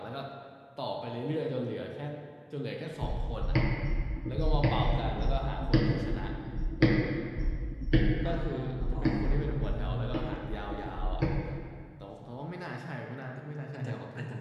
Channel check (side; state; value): both; identical; correlation 1.00